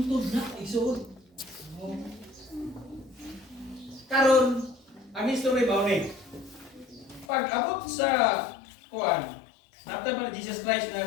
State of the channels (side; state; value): right; drops out; at 7.2 s